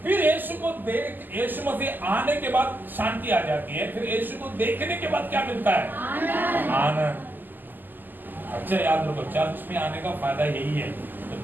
फिर यीशु मसीह आने के बाद शांति आ जाती है। फिर यीशु को देखने के बाद क्या मिलता है? आनंद। अच्छा याद रखो, चर्च में आने का फायदा यही है। तो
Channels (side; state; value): left; late; 0.088 ms